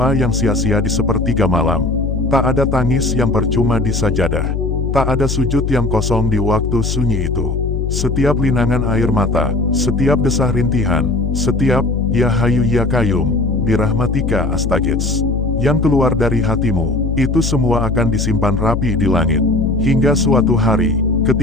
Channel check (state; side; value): noise; left; hum, 1 dB below the sound